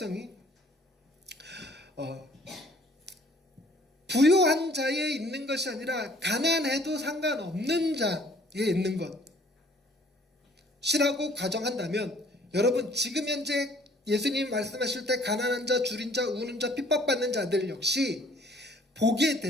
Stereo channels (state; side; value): normal; both; correlation 0.57